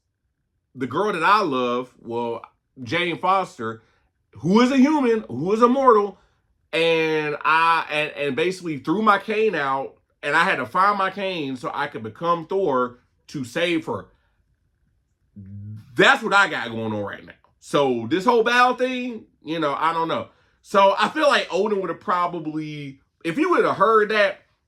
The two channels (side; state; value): both; identical; correlation 1.00